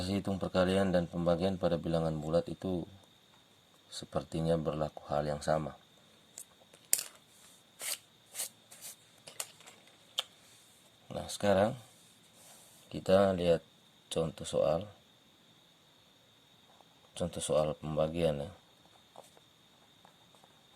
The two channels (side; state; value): both; identical; correlation 1.00